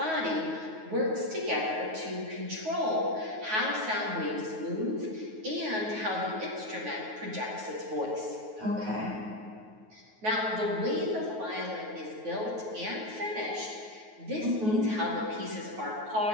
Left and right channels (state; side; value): late; left; 9.4 ms